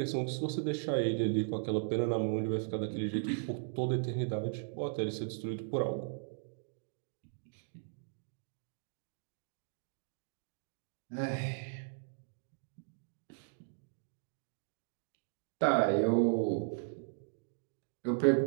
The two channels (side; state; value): left; silent; digital silence